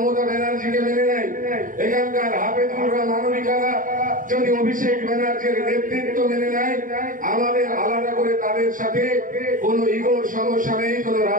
ব্যানার্জিকে মেনে নেয়, এখানকার হাফেজুলরা মানবিকারা যদি অভিষেক ব্যানার্জির নেতৃত্ব মেনে নেয়, আমাদের আলাদা করে তাদের সাথে কোনো ইগোর সমস্যা নেই, কোনো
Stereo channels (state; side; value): late; left; 0.39 ms